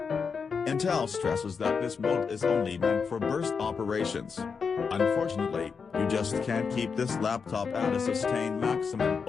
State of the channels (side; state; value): right; quieter; 5.6 dB